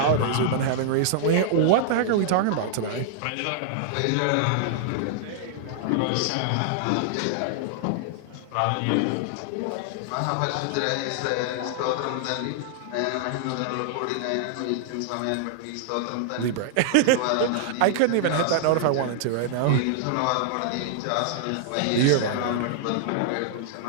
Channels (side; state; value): both; different; correlation -0.01